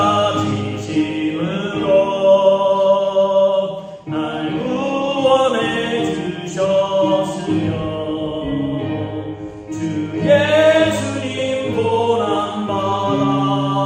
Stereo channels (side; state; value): both; identical; correlation 1.00